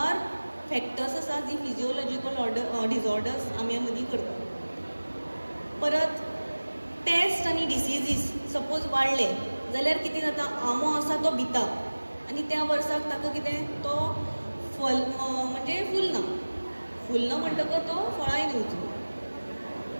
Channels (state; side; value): inverted; both; correlation -1.00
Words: फॅक्टर्स आसा जी फिजिओलॉजिकल डिजॉर्डर्स आंब्या मदीं करता. परत पेस्ट आनी डिसिजीस सपोज वाडले जाल्यार कितें जाता? आंबो आसा तो भिता आनी त्या वर्साक ताका कितें तो फल म्हणजे फुलना म्हणटकच तो फळांय दिवचो.